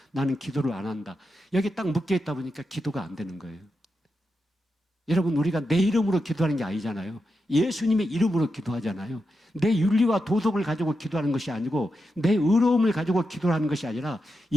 나는 기도를 안 한다. 여기 딱 묶여 있다 보니까 기도가 안 되는 거예요. 여러분, 우리가 내 이름으로 기도하는 게 아니잖아요. 예수님의 이름으로 기도하잖아요. 내 윤리와 도덕을 가지고 기도하는 것이 아니고, 내 의로움을 가지고 기도하는 것이 아니라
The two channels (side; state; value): both; normal; correlation 0.88